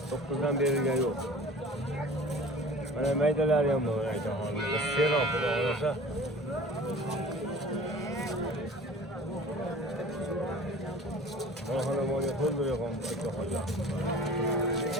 9dan berilgan yo'q. Mana maydalari ham bor ekan hozir. Serob xudo xolasa. Mana mo'ya to'ldirgan ekan hozir.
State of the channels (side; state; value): both; normal; correlation 0.43